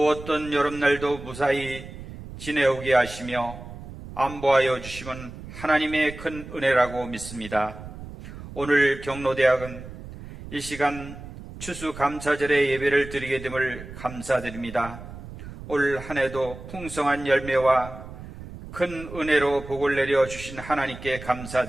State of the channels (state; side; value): noise; right; rumble, 13 dB below the sound